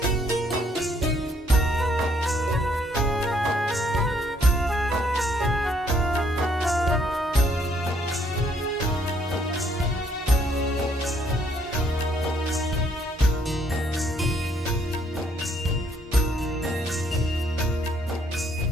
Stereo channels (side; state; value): both; normal; correlation 0.68